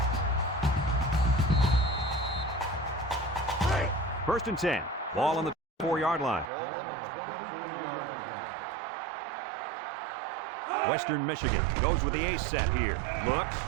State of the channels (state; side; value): drops out; left; at 6.5 s